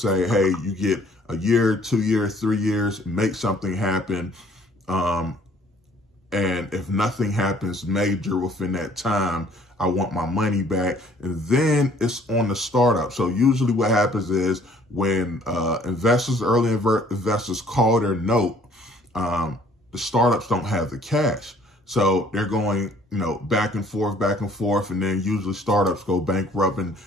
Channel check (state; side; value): normal; both; correlation 0.58